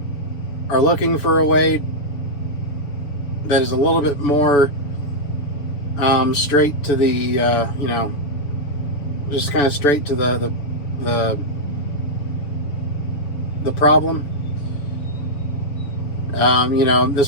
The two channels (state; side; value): late; right; 7.0 ms